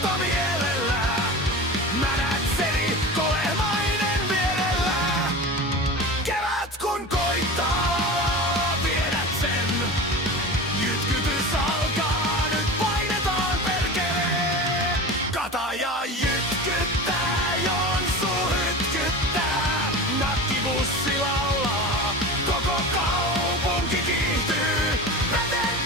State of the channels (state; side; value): normal; both; correlation 0.30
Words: mielellä, Mänätseri kolemainen vierellä. Kevät kun koittaa, viedät sen. Jytkytys alkaa, nyt painetaan perkelee. Kataja jytkyttää, Jonsu hytkyttää. Nakkibussi laulaa, koko kaupunki kiihtyy. Peten